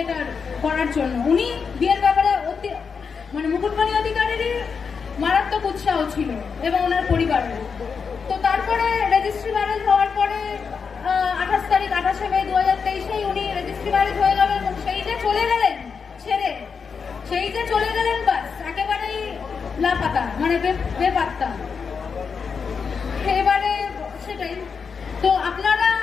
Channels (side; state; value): right; quieter; 5.8 dB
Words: করার জন্য। উনি বিয়ের ব্যাপারে মানে মুকুটমণি অধিকারীরই মারাত্মক উৎসাহ ছিল এবং ওনার পরিবারের। তো তারপরে রেজিস্ট্রি ম্যারেজ হওয়ার পরে 28শে মে 2023 উনি রেজিস্ট্রি ম্যারেজ হয়ে গেল এবং সেই যে চলে গেলেন ছেড়ে, সেই যে চলে গেলেন, বাস একেবারেই লাপাতা, মানে বেপাত্তা। এবারে সেটাই তো আপনারা